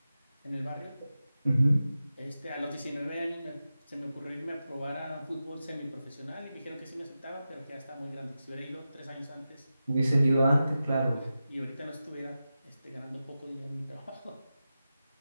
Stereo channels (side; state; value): both; inverted; correlation -0.93